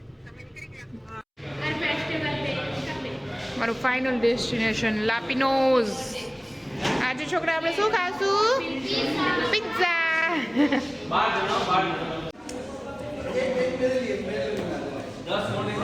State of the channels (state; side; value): identical; both; correlation 1.00